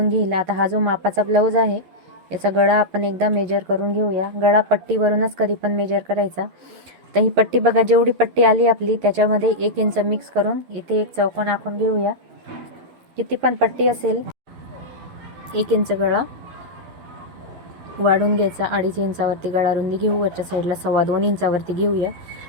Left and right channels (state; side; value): late; left; 11 ms